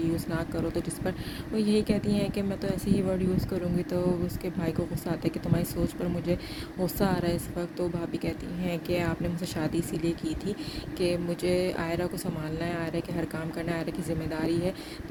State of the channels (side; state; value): both; identical; correlation 1.00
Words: یوز نہ کرو. تو جس پر وہ یہی کہتی ہیں کہ میں تو ایسے ہی ورڈ یوز کروں گی. تو اس کے بھائی کو غصہ آتا ہے کہ تمہاری سوچ پر مجھے غصہ آ رہا ہے اس وقت. تو بھابھی کہتی ہیں کہ آپ نے مجھ سے شادی اسی لیے کی تھی کہ مجھے عائرہ کو سنبھالنا ہے, عائرہ کے ہر کام کرنا ہے, عائرہ کی ذمہ داری ہے.